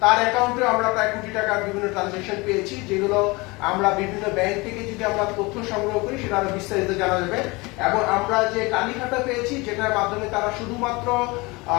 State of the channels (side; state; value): right; quieter; 24.6 dB